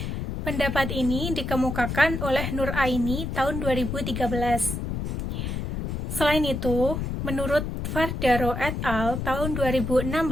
Pendapat ini dikemukakan oleh Nur Aini tahun 2013. Selain itu, menurut Fardaro et al. Tahun 2016,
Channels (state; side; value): noise; left; rumble, 3 dB below the sound